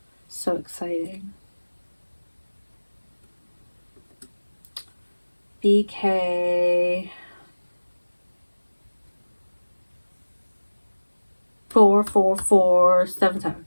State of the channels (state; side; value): inverted; both; correlation -1.00